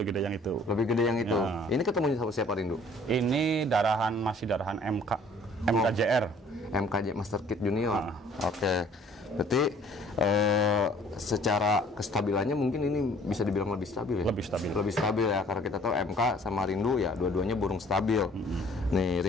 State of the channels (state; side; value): normal; both; correlation 0.55